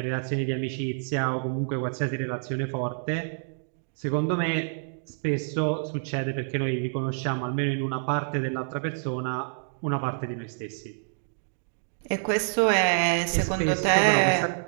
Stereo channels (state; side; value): silent; left; 60 dB below the other